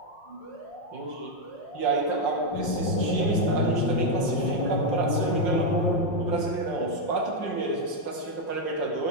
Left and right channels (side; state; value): right; late; 5.6 ms